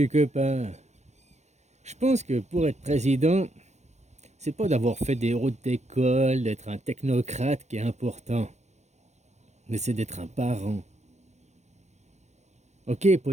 copain. Je pense que pour être président, c'est pas d'avoir fait des hautes d'école, d'être un technocrate qui est important, mais c'est d'être un parent. Ok,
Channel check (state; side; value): late; left; 0.33 ms